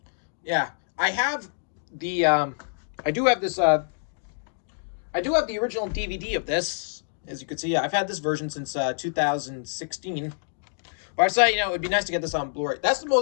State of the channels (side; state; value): right; silent; digital silence